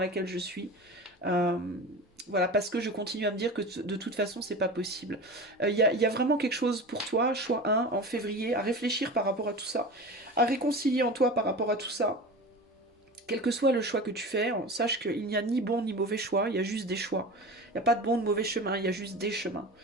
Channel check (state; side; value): normal; both; correlation 0.32